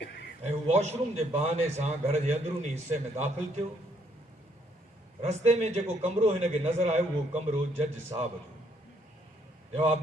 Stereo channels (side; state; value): both; normal; correlation 0.69